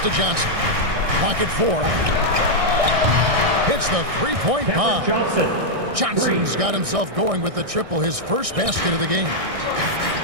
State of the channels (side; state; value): left; late; 1.6 ms